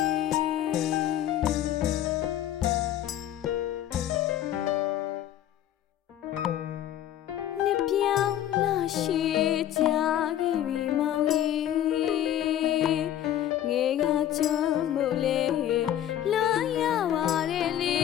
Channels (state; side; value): quieter; right; 11.6 dB